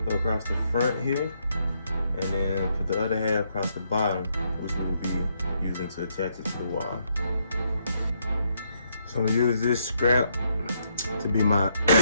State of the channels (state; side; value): inverted; both; correlation -0.75